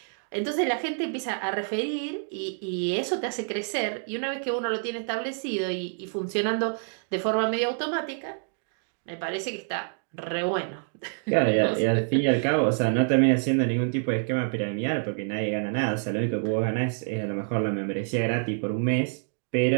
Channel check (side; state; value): left; silent; 60 dB below the other